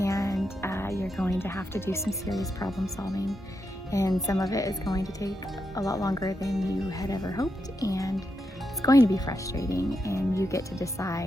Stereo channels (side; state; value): both; normal; correlation 0.84